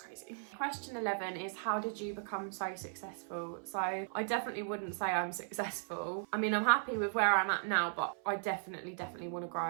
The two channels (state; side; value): silent; left; 53 dB below the other